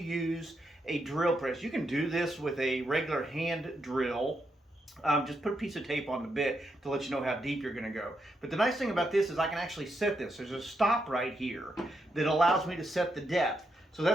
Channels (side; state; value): both; normal; correlation 0.81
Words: a drill press. You can do this with a regular hand drill. Just put a piece of tape on the bit to let you know how deep you're going to go. But the nice thing about this is I can actually set this. There's a stop right here that allows me to set the depth. So